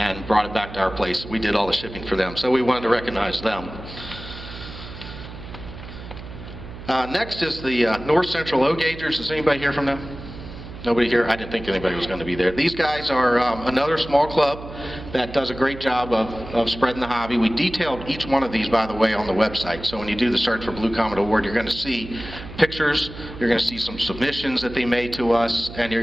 brought it back to our place. We did all the shipping for them, so we wanted to recognize them. Next is the North Central O-Gagers. Is anybody here from them? Nobody here? I didn't think anybody was going to be there. These guys are another small club that does a great job of spreading the hobby. We detailed each one of these, by the way, on the website. So when you do the search for Blue Comet Award, you're going to see pictures, you're going to see some submissions that they made to us, and you're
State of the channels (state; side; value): noise; right; hum, 13 dB below the sound